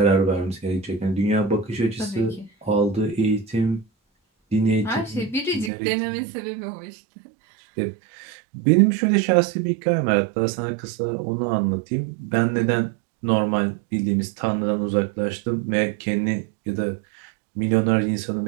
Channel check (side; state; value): left; drops out; at 5.7 s